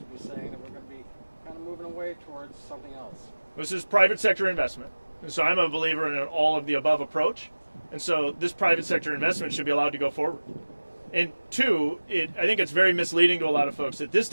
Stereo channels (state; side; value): inverted; both; correlation -1.00